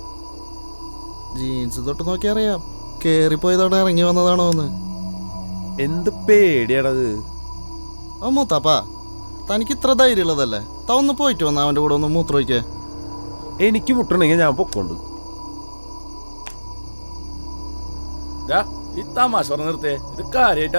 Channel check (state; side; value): inverted; both; correlation -1.00